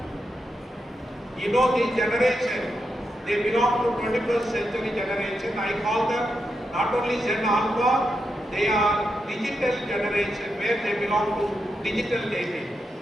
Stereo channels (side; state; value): both; normal; correlation 0.85